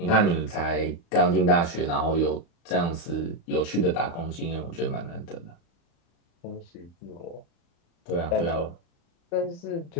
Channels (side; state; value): right; late; 35 ms